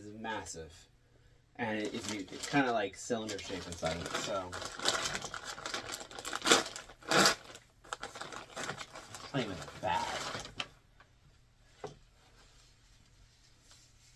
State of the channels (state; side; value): identical; both; correlation 1.00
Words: massive, and it's kind of like cylinder shape inside of it. So, it's not even bad.